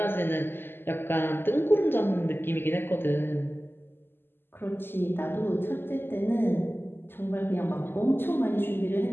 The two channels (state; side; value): late; right; 0.10 ms